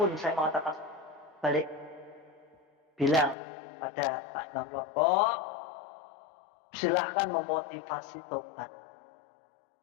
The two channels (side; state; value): right; drops out; at 3.4 s